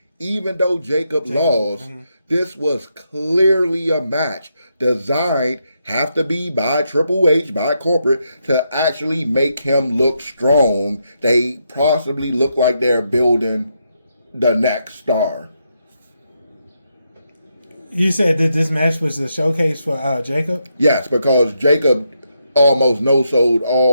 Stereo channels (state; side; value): inverted; both; correlation -0.80